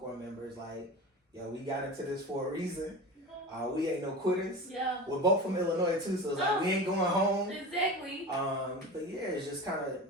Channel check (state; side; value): normal; both; correlation 0.30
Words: member, is like, yo, we got into this for a reason. We ain't no quitters. Yeah. We're both from Illinois too, so it's like we ain't going home. Exactly. But yeah, it's just kind of